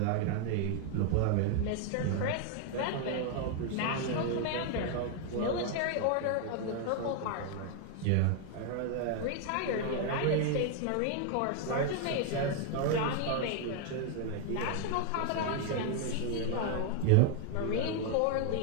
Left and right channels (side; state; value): both; different; correlation 0.00